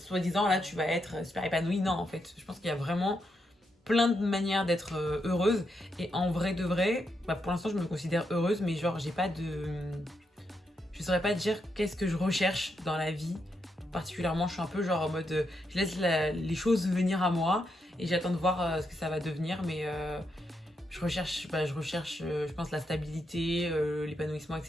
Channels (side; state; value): both; normal; correlation 0.82